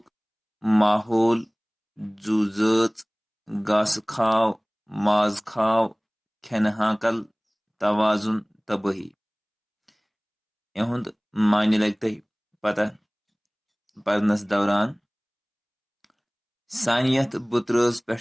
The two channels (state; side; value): identical; both; correlation 1.00